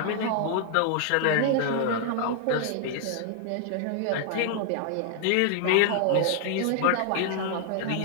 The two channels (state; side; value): different; both; correlation 0.00